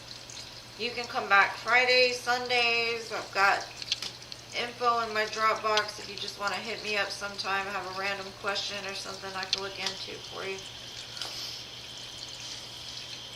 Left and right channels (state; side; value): identical; both; correlation 1.00